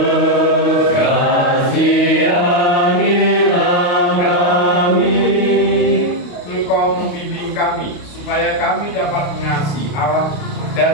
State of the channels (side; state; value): right; late; 28 ms